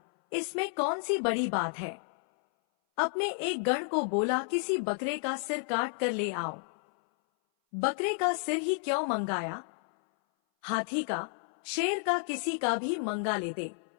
इसमें कौन सी बड़ी बात है। अपने एक गण को बोला, किसी बकरे का सिर काट कर ले आओ। बकरे का सिर ही क्यों मंगाया, हाथी का, शेर का, किसी का भी मंगा लेते।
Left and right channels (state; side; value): silent; right; 57 dB below the other